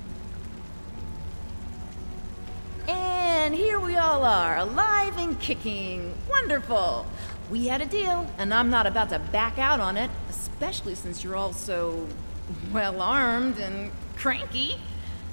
And here we all are, alive and kicking. Wonderful. We had a deal, and I'm not about to back out on it, especially since you're all so well-armed and cranky.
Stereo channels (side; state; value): both; inverted; correlation -1.00